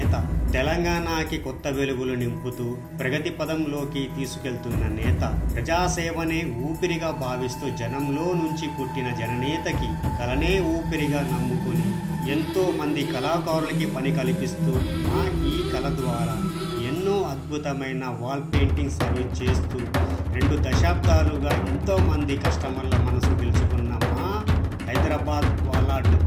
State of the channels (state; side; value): identical; both; correlation 1.00